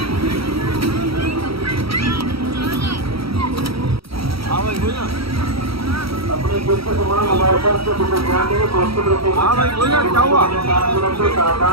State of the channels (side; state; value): left; late; 0.75 ms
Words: हाँ भाई बोल ना हाँ भाई बोल ना क्या हुआ